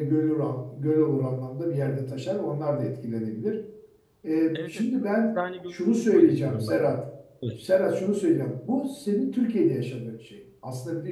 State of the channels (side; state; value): both; identical; correlation 1.00